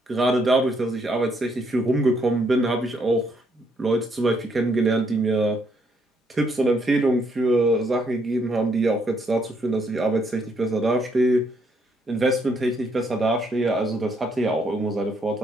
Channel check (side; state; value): both; normal; correlation 0.72